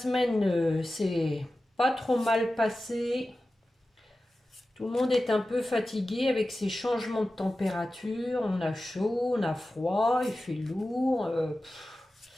s'est pas trop mal passée. Tout le monde est un peu fatigué avec ces changements de température. On a chaud, on a froid, il fait lourd.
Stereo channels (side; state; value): both; normal; correlation 0.94